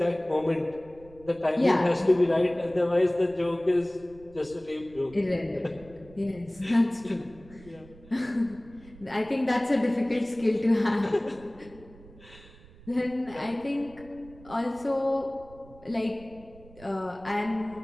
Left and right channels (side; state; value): right; noise; rumble, 22 dB below the sound